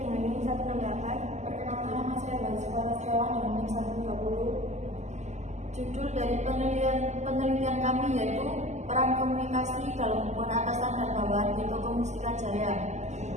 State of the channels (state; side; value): late; left; 0.33 ms